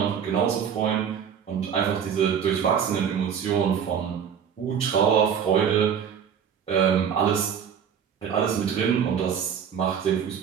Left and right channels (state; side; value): quieter; left; 7.8 dB